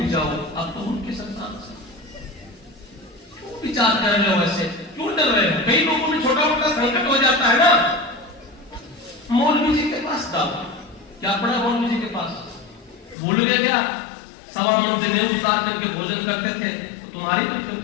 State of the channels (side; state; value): right; drops out; at 13.2 s